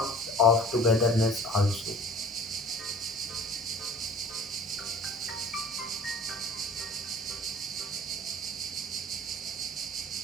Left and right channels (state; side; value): normal; both; correlation 0.45